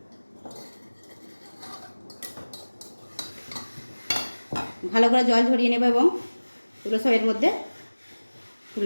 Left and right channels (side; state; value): both; inverted; correlation -1.00